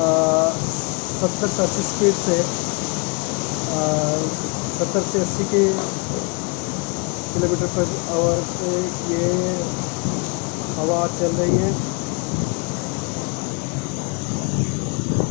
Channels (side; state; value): right; quieter; 31.5 dB